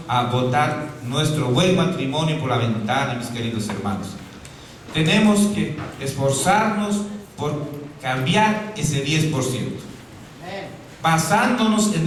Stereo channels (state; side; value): identical; both; correlation 1.00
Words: a botar nuestro buen matrimonio por la ventana, mis queridos hermanos. Tenemos que esforzarnos por cambiar ese 10%, basándonos